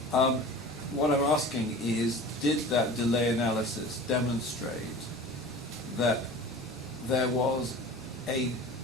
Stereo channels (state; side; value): noise; left; hum, 27 dB below the sound